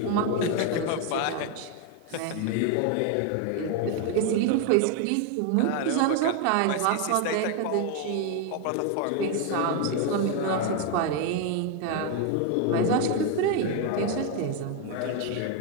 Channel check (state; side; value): different; both; correlation 0.01